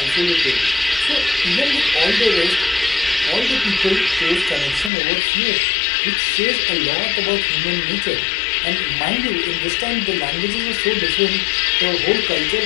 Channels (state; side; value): drops out; right; at 4.9 s